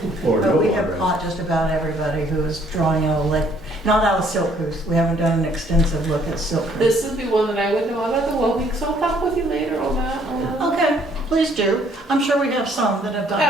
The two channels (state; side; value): normal; both; correlation 0.64